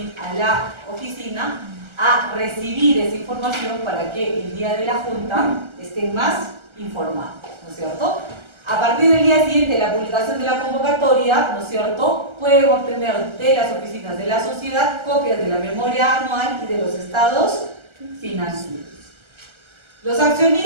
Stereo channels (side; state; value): left; late; 1.3 ms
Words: a la oficina a recibir esa información para que el día de la junta estén más informados, ¿no es cierto? A partir del día siguiente de la publicación de la convocatoria, ¿no es cierto?, pueden obtener de las oficinas de la sociedad copias de la memoria anual y de los estados financieros. Los